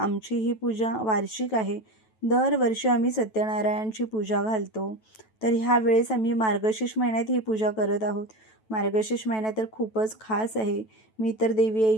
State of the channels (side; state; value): right; late; 9.1 ms